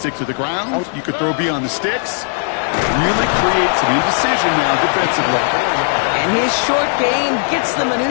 to the ground, you could throw beyond the sticks. Really create some indecision now defensively. And his short gain gets them a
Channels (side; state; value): right; silent; 68 dB below the other